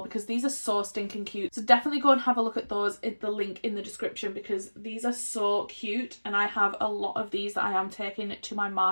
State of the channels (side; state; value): both; inverted; correlation -1.00